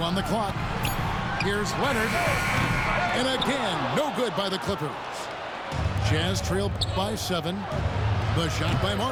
on the clock. Here's Leonard. And again, no good by the Clippers. Jazz trailed by 7. The shot by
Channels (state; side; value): identical; both; correlation 1.00